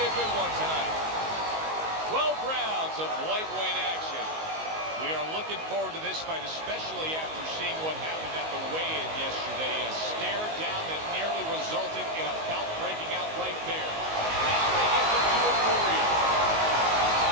a good one tonight. 12 rounds of lightweight action. We are looking forward to this fight, especially after seeing what happened at the weigh-in yesterday. A stare down that nearly resulted in a bout breaking out right there. Now they get to do it for real.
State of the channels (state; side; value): late; left; 19 ms